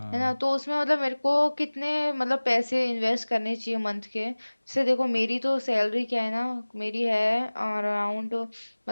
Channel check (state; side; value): inverted; both; correlation -1.00